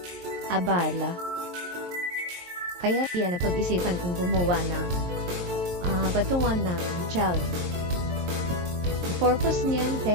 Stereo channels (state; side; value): late; left; 23 ms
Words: Abala. Kaya yan, napag-isipan kong gumawa ng patungan ng child. Purpose niyan,